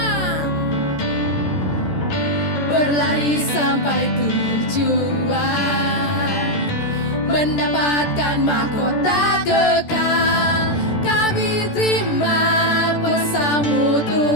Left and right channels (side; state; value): right; late; 14 ms